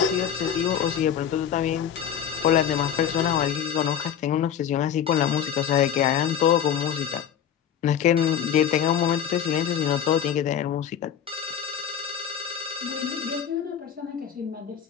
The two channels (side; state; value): right; quieter; 8.8 dB